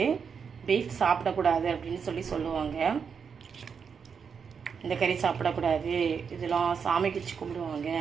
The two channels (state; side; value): quieter; left; 6.4 dB